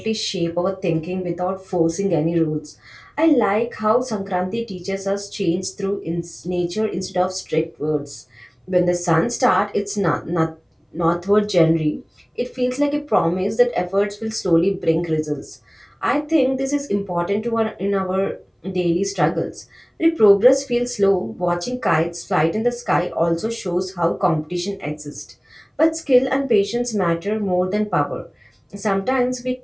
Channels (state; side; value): identical; both; correlation 1.00